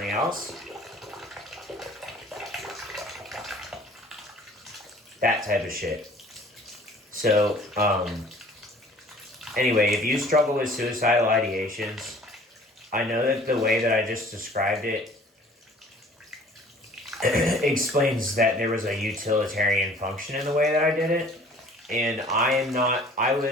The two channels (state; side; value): normal; both; correlation 0.50